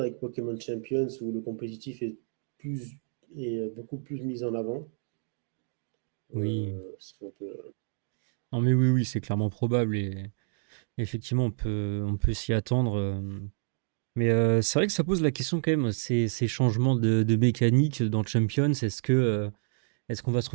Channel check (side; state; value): left; silent; 58 dB below the other